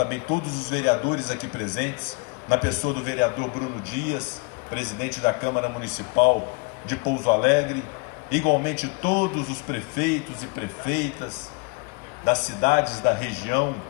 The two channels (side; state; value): right; quieter; 30.1 dB